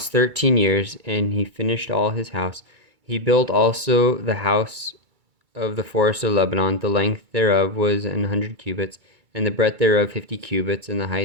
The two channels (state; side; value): late; left; 2.3 ms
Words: 13 years, and he finished all his house. He built also the house of the forest of Lebanon. The length thereof was 100 cubits, and the breadth thereof 50 cubits, and the